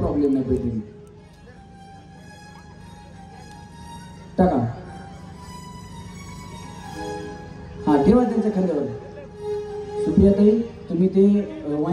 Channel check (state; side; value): identical; both; correlation 1.00